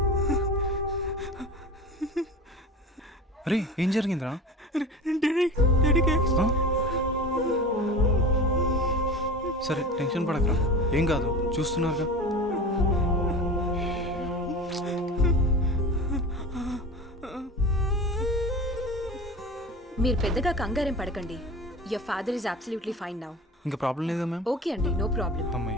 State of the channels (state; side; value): normal; both; correlation 0.34